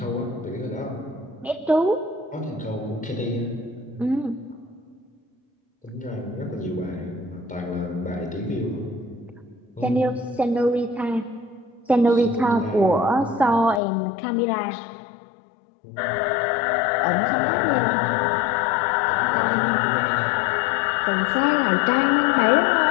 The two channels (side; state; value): right; drops out; at 13.8 s